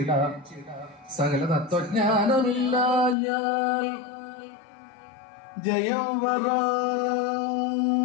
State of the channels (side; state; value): right; drops out; at 3.2 s